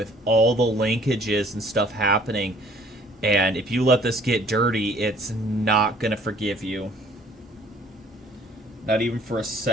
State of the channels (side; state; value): both; normal; correlation 0.56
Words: all the linkages and stuff happening. And if you let this get dirty, it's not going to forgive you. Not even for a